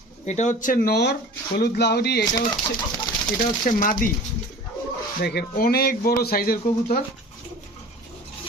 এটা হচ্ছে নর। হলুদ লাহোরি, এটা হচ্ছে মাদি। দেখেন অনেক বড় সাইজের কবুতর,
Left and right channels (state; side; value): normal; both; correlation 0.41